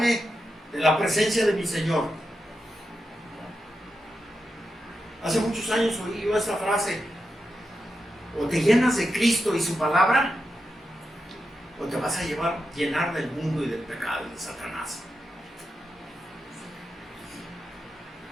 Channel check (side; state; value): both; normal; correlation 0.88